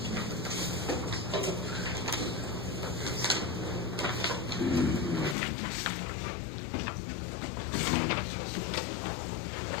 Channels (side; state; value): right; drops out; at 5.4 s